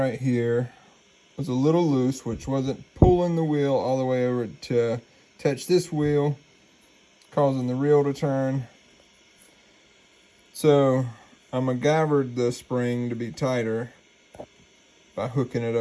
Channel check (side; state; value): both; identical; correlation 1.00